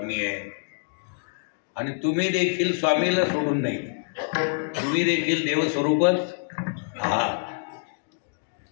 आहेत. आणि तुम्ही देखील स्वामीला सोडून नाही, तुम्ही देखील देवस्वरूपच आहात.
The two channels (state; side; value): silent; right; digital silence